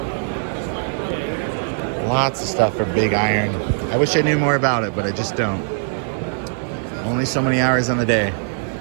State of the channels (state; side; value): silent; left; 65 dB below the other